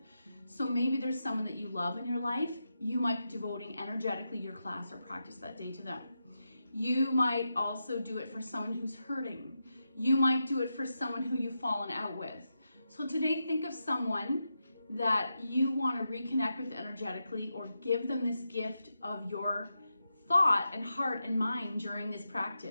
So maybe there's someone that you love in your life. You might be devoting energetically your class or practice that day to them. You might also do it for someone who's hurting. You might do it for someone who you've fallen out with. So today, think of someone that you want to reconnect with energetically or give them this gift of your thought and heart and mind during this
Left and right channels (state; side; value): inverted; both; correlation -0.88